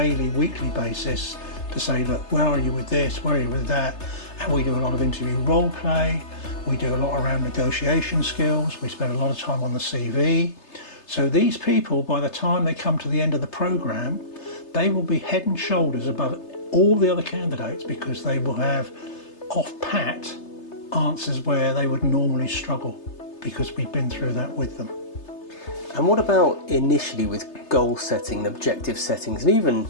weekly basis to say, look, where are you with this, where are you with that? And we do a lot of interview role play, we do a lot around negotiation skills, we spend a lot of time on the CV. So these people, by the time they come to the end of the programme, they will be head and shoulders above all the other candidates, because they will have off-pat answers where they would normally struggle, because we've been through that with them. And what about initially with goal setting, objective settings, and even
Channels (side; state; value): right; late; 3.3 ms